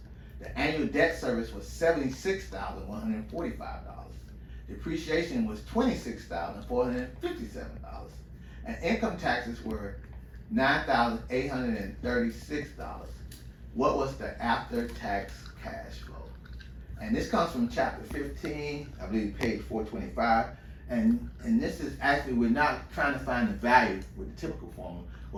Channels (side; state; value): both; identical; correlation 1.00